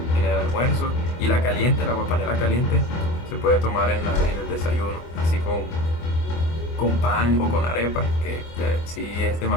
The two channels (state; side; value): late; right; 24 ms